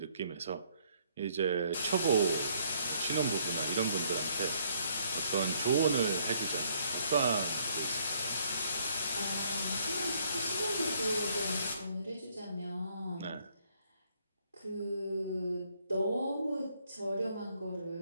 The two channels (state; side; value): inverted; both; correlation -0.66